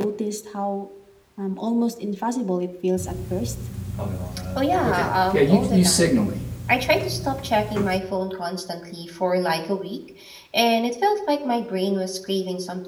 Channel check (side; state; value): both; identical; correlation 1.00